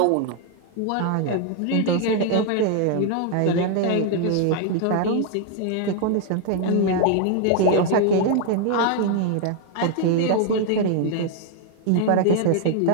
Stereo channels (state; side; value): different; both; correlation 0.00